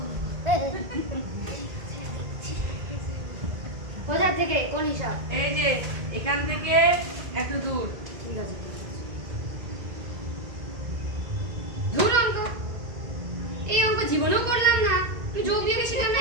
কোথা থেকে কোন হিসাব? এই যে এখান থেকে এত দূর। ঠিক আছে। ধুর অঙ্ক, এই অঙ্ক জীবনেও করলাম না। আমি যোগ বিয়োগে শিখলাম না,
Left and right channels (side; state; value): left; late; 1.9 ms